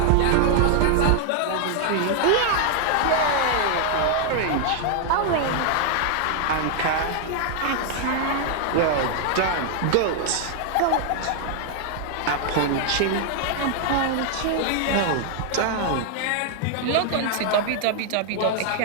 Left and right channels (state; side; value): different; both; correlation 0.00